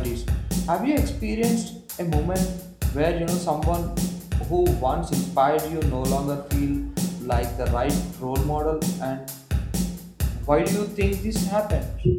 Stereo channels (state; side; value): identical; both; correlation 1.00